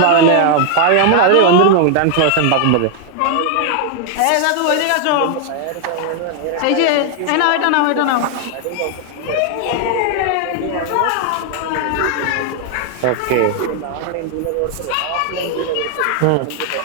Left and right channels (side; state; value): both; different; correlation 0.00